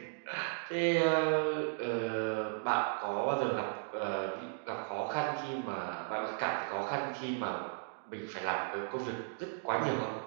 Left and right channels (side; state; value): left; silent; digital silence